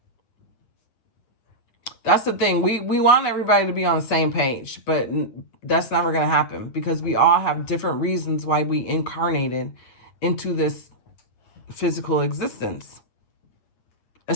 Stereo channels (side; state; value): right; late; 9.0 ms